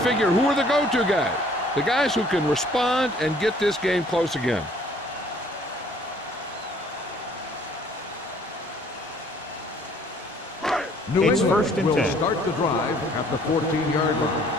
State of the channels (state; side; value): normal; both; correlation 0.58